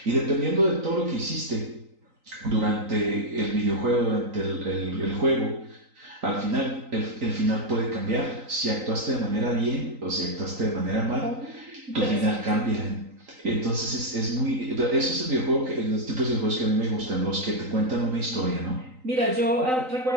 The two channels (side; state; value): left; late; 3.9 ms